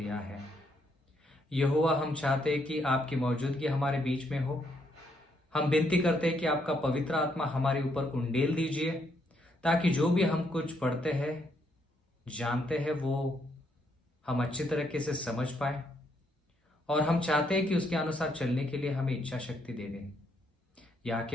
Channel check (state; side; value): normal; both; correlation 0.74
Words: है। यहोवा, हम चाहते हैं कि आपकी मौजूदगी हमारे बीच में हो। हम विनती करते हैं कि आपका पवित्र आत्मा हमारे ऊपर उंडेल दीजिए, ताकि जो भी हम कुछ पढ़ते हैं, जानते हैं, वो हम अच्छी तरीके से समझ पाए। और हम चाहते हैं कि उसके अनुसार चलने के लिए हमें इच्छा शक्ति दे दें। यहाँ